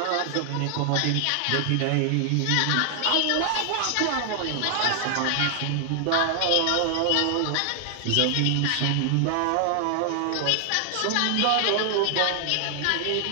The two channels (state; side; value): different; both; correlation 0.00